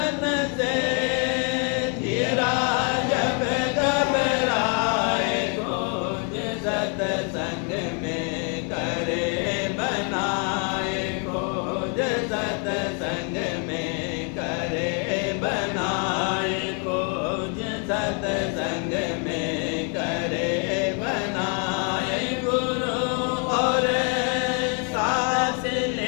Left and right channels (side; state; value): right; quieter; 38.7 dB